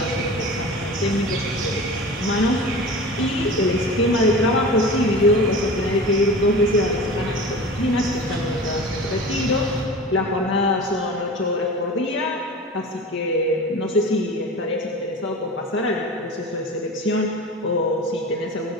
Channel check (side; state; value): both; normal; correlation 0.34